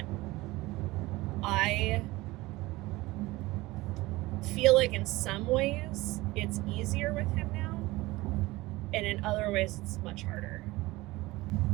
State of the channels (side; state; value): left; quieter; 20.0 dB